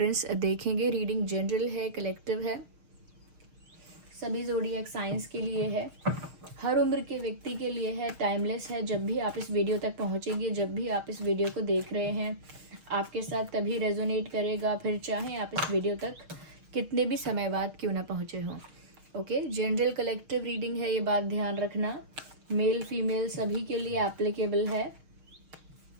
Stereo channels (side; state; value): left; late; 6.5 ms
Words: देखेंगे। रीडिंग जनरल है, कलेक्टिव है, सभी ज़ोडिएक साइंस के लिए है, हर उम्र के व्यक्ति के लिए है, टाइमलेस है। जब भी आप इस वीडियो तक पहुंचेंगे, जब भी आप इस वीडियो को देख रहे हैं, आपके साथ तभी रेजोनेट करेगा, फिर चाहे आप इस वीडियो तक कितने भी समय बाद क्यों ना पहुंचे हों। ओके, जनरल कलेक्टिव रीडिंग है, ये बात ध्यान रखना। मेल फीमेल सभी के लिए एप्लीकेबल है।